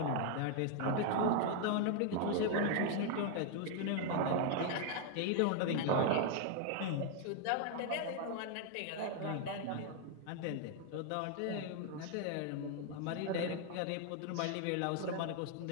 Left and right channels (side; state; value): both; different; correlation 0.00